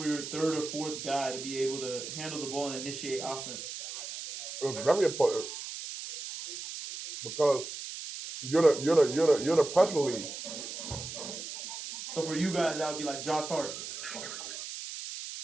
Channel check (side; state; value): right; noise; hiss, 8 dB below the sound